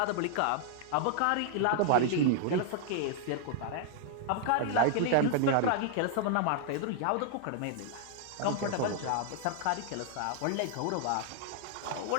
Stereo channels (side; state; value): both; different; correlation 0.00